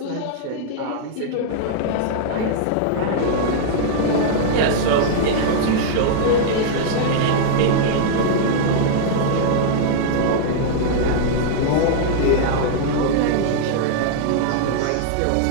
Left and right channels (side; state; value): both; different; correlation -0.01